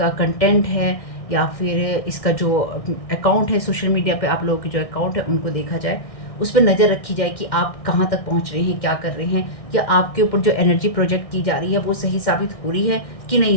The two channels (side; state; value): right; late; 1.6 ms